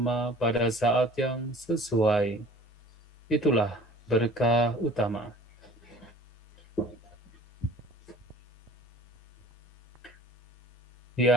pada saat yang sesuai, itulah berkah utama.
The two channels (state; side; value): normal; both; correlation 0.47